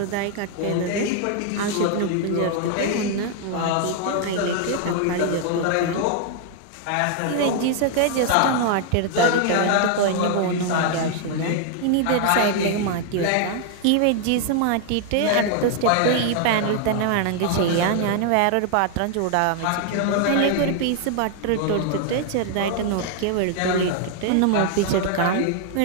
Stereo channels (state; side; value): different; both; correlation 0.00